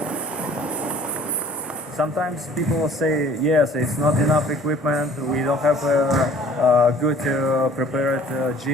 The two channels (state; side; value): normal; both; correlation 0.53